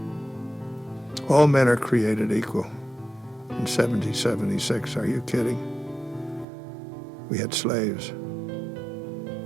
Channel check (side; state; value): left; drops out; at 6.5 s